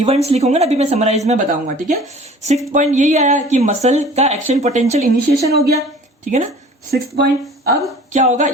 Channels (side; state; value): both; normal; correlation 0.46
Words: लिखोगे ना, अभी मैं समराइज में बताऊंगा, ठीक है। सिक्स्थ पॉइंट यही आया कि मसल का एक्शन पोटेंशियल इनिशिएशन हो गया, ठीक है ना, सिक्स्थ पॉइंट। अब क्या होगा,